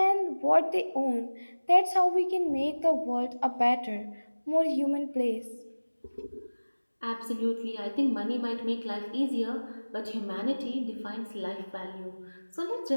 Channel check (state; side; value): inverted; both; correlation -1.00